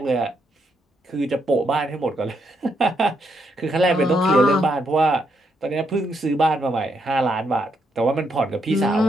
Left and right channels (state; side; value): normal; both; correlation 0.77